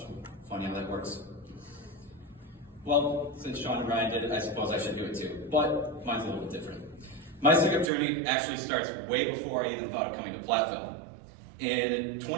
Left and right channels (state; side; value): drops out; left; at 7.9 s